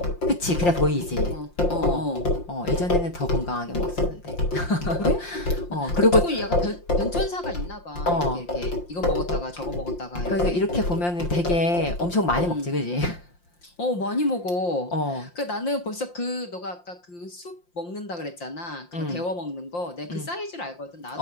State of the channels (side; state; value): right; late; 5.7 ms